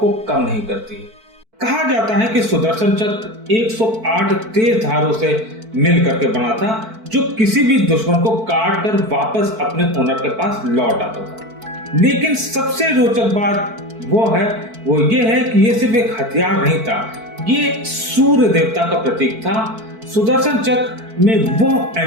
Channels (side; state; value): left; late; 4.5 ms